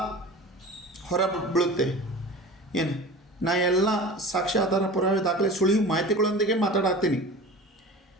ಹೊರ ಬೀಳುತ್ತೆ. ಏನು ನಾ ಎಲ್ಲ ಸಾಕ್ಷ್ಯ, ಆಧಾರ, ಪುರಾವೆ, ದಾಖಲೆ, ಸುಳಿವು ಮಾಹಿತಿಗಳೊಂದಿಗೆ ಮಾತಾಡತ್ತೀನಿ.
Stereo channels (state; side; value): normal; both; correlation 0.36